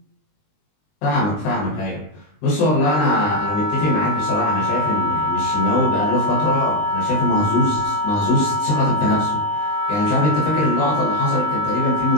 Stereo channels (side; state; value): right; late; 20 ms